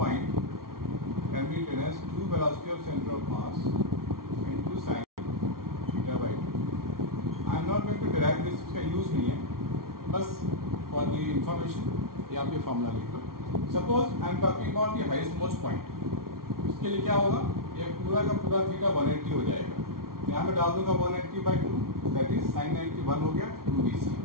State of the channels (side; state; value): left; late; 0.93 ms